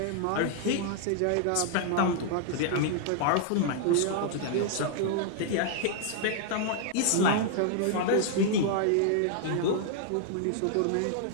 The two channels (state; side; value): different; both; correlation -0.01